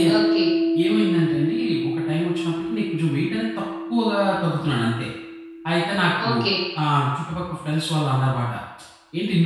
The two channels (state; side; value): identical; both; correlation 1.00